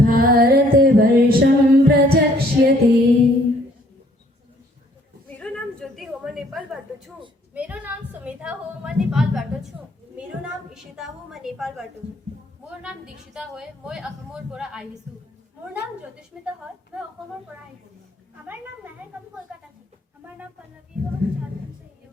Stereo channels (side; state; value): both; normal; correlation 0.62